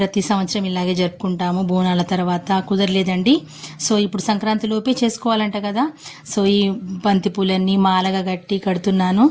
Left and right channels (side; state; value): both; identical; correlation 1.00